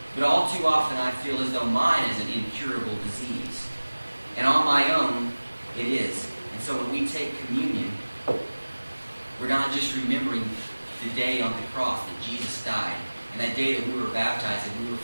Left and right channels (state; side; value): inverted; both; correlation -1.00